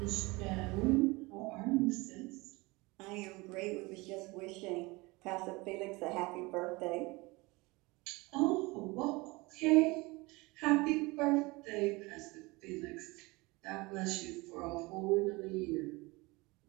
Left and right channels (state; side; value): quieter; left; 23.9 dB